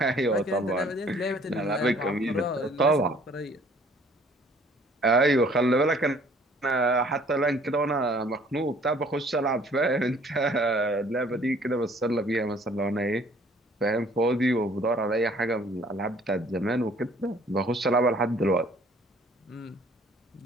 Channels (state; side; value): normal; both; correlation 0.57